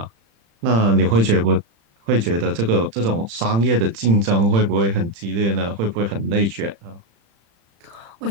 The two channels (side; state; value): left; late; 35 ms